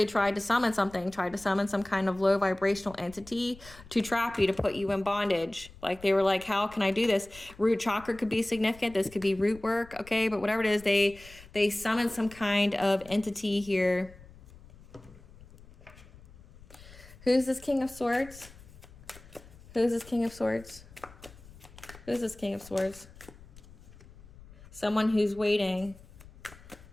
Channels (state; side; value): noise; left; rumble, 21 dB below the sound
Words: tried to summon something, tried to summon some kind of low vibrational entity to trap you, to put you in bondage. Like they were like, how can I do this? Root chakra could be significant. This could be root work. Okay. But whatever it is, they summon some kind of entity here. Who's this King of Swords? Who's this King of Swords? Who's this King of Swords? Someone who's waiting.